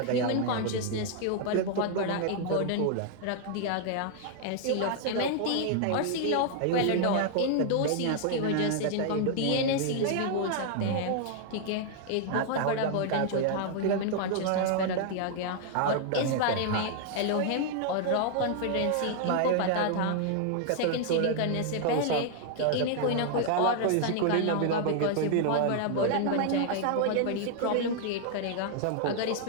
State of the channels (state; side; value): different; both; correlation 0.00